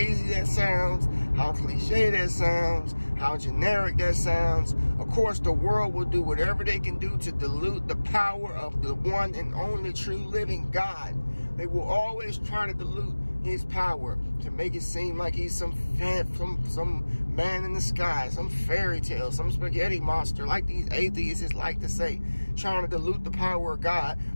that sounds, how cliche that sounds, how generic that sounds. Of course, the world will do whatever they can do to dilute the power of the one and only true living God. They will always try to dilute his power to make it seem like he's some man in the sky, some fairy tale, some spaghetti monster, like these atheists like to say, trying to dilute the power of God.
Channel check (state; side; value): inverted; both; correlation -1.00